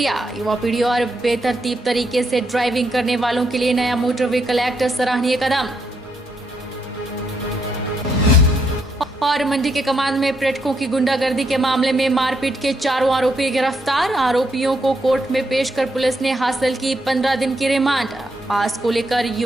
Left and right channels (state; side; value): normal; both; correlation 0.77